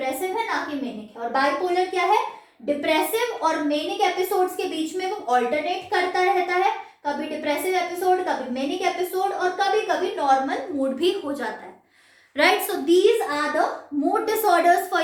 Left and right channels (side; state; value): both; identical; correlation 1.00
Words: है ना कि मेनिक है। और बाइपोलर क्या है, डिप्रेसिव और मेनिक एपिसोड्स के बीच में वो ऑल्टरनेट करता रहता है, कभी डिप्रेसिव एपिसोड, कभी मेनिक एपिसोड, और कभी कभी नॉर्मल मूड भी हो जाता है, right? So these are the mood disorders for